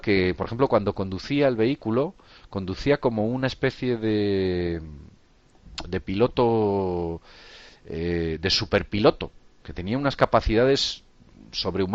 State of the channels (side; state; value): both; identical; correlation 1.00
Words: por ejemplo, cuando conducía el vehículo, conducía como una especie de piloto, de superpiloto, que tenía unas capacidades